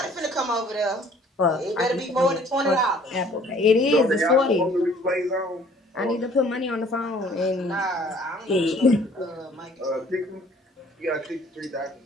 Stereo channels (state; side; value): normal; both; correlation 0.56